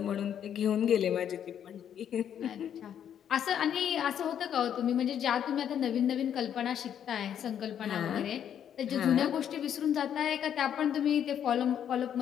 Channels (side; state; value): right; quieter; 9.3 dB